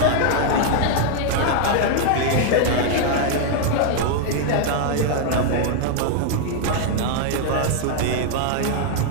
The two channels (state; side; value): different; both; correlation 0.00